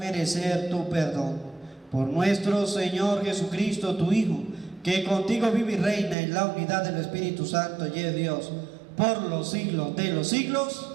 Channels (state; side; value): drops out; left; at 6.2 s